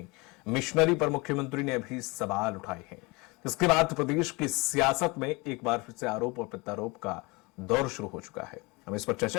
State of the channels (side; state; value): right; quieter; 25.8 dB